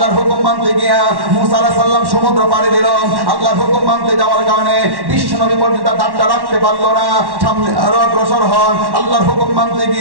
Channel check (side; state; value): left; late; 1.1 ms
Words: হুকুম মানতে গিয়া মুসা আলাইহিস সালাম সমুদ্র পাড়ি দিল। আল্লাহর হুকুম মানতে যাওয়ার কারণে বিশ্ব নবী পর্যন্ত দাঁতটা রাখতে পারলো না, সামনে আরো অগ্রসর হন। আল্লাহর হুকুম মানতে